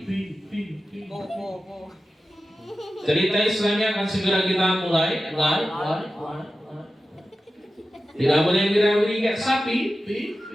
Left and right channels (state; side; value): normal; both; correlation 0.93